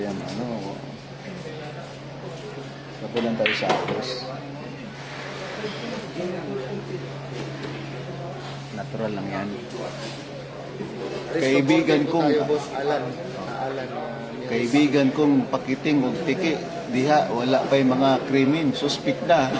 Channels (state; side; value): identical; both; correlation 1.00